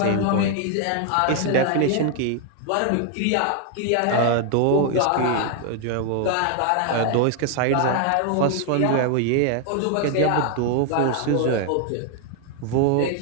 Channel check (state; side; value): different; both; correlation 0.00